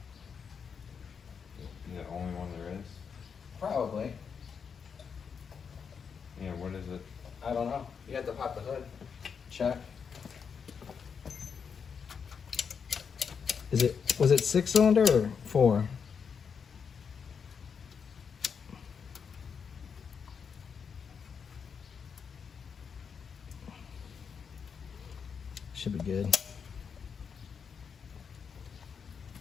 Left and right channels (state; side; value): quieter; right; 6.4 dB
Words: The only one there is? Probably. Yeah, what is it? I don't know. You had to pop the hood. Check. Was it 6-cylinder or 4? Should be good.